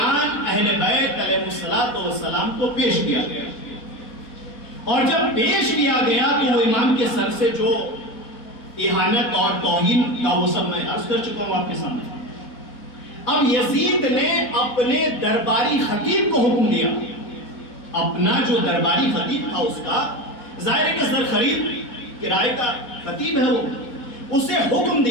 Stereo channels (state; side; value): late; right; 4.1 ms